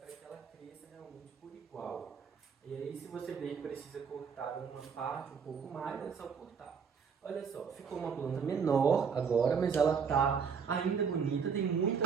que ela cresça realmente por igual. E aí, se você ver que precisa cortar uma parte um pouco mais, é só cortar. Olha só, ficou uma planta menor agora, mas ela está ainda bonita, tem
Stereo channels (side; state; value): left; quieter; 6.3 dB